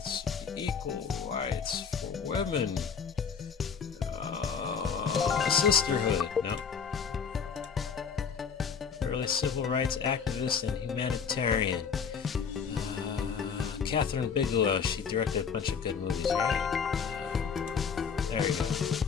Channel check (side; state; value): right; quieter; 6.4 dB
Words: for equal rights for women, sisterhood, no. Early civil rights activist and humanitarian. Catherine Bigelow, she directed a bunch of good movies, right? There we go.